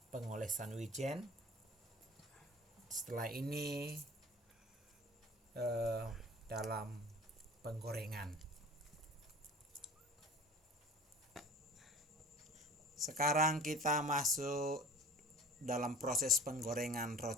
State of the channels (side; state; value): both; normal; correlation 0.42